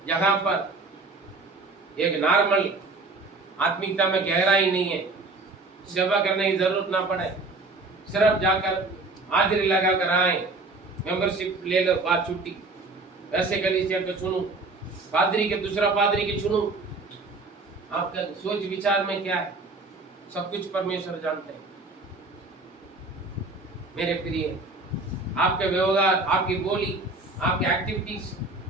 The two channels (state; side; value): quieter; left; 3.4 dB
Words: जहां पर एक नॉर्मल आत्मिकता में गहराई नहीं है, सेवा करने की जरूरत ना पड़े, सिर्फ जाकर हाजिरी लगा कर आए, मेंबरशिप ले लो, बात छुट्टी। ऐसे गली से चुनूं, पादरी के दूसरा पादरी के चुनूं। आपका सोच विचार में क्या है, सब कुछ परमेश्वर जानते हैं। मेरे प्रिय, आपके व्यवहार, आपकी बोली, आपकी एक्टिविटीज